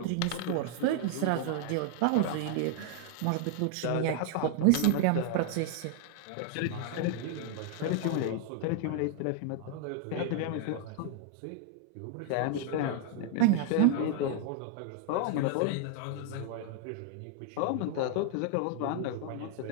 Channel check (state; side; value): different; both; correlation 0.00